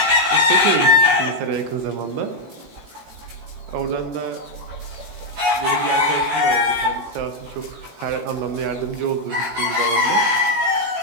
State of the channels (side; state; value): left; late; 18 ms